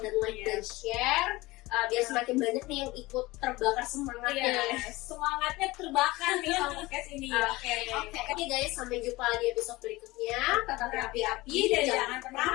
dan like dan share biar semakin banyak nih yang ikut terbakar semangatnya. Semangatnya terbakar nih sama podcast ini. Oke guys, sampai jumpa di episode berikutnya. Tetap api-api Dan jangan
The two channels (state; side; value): quieter; right; 20.5 dB